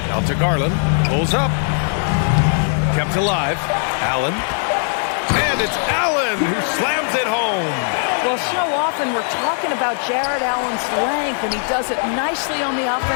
Out to Garland, pulls up. Kept alive. Allen. And it's Allen who slams it home. Well, so often we're talking about Jared Allen's length, and he does it nicely on the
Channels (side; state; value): right; silent; 59 dB below the other